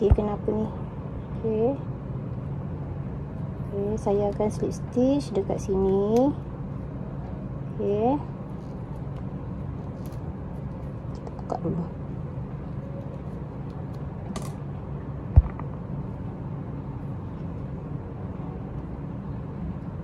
kenapa ni? Okey. Okey, saya akan slip stitch dekat sini. Okey. Kita buka dulu.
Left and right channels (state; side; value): identical; both; correlation 1.00